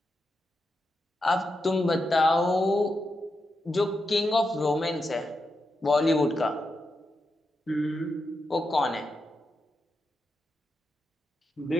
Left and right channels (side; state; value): both; normal; correlation 0.86